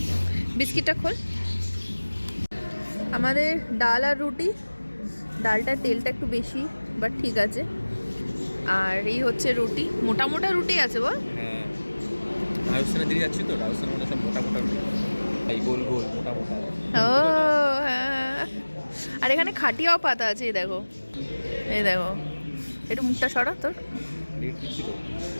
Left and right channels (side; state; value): both; inverted; correlation -1.00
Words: বিস্কিটটা খোল। আমাদের ডাল আর রুটি, ডালটার তেলটা একটু বেশি, বাট ঠিক আছে। আর এই হচ্ছে রুটি, মোটা মোটা রুটি আছে বল। হ্যাঁ, রাজস্থানে দিয়ে যাচ্ছি তো, রাজস্থানে মানে সব মোটা মোটা রুটি, এই গোল গোল মোটা মোটা। ও হ্যাঁ, আর এখানে খাটিয়াও পাতা আছে, এই দেখো, এই দেখো। একটু মুখটা সরা তোর,